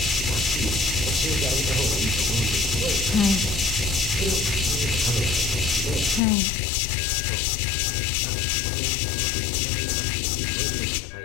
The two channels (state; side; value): drops out; right; at 6.2 s